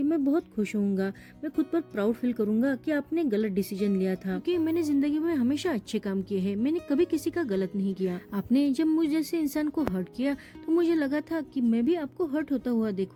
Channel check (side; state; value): both; identical; correlation 1.00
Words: मैं बहुत खुश होऊंगा, मैं खुद पर प्राउड फील करूंगा कि आपने गलत डिसीजन लिया था, क्योंकि मैंने जिंदगी में हमेशा अच्छे काम किए हैं, मैंने कभी किसी का गलत नहीं किया। आपने जब मुझ जैसे इंसान को हर्ट किया तो मुझे लगा था कि मैं भी आपको हर्ट होता हुआ